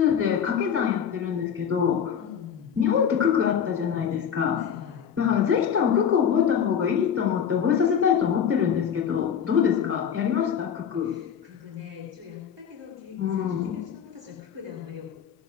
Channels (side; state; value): right; quieter; 8.0 dB